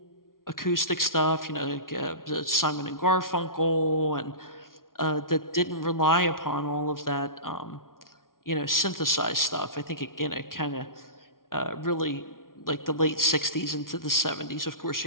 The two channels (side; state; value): right; late; 0.91 ms